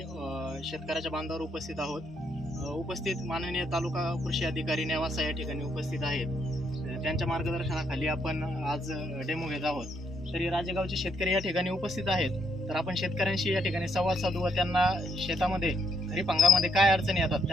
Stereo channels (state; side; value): normal; both; correlation 0.74